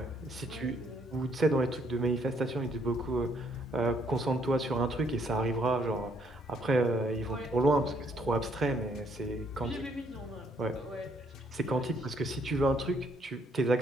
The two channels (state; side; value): normal; both; correlation 0.69